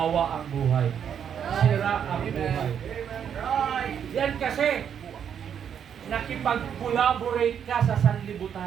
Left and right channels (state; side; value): quieter; left; 8.3 dB